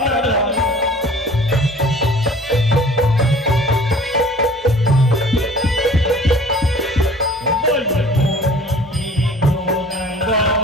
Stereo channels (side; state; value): both; normal; correlation 0.48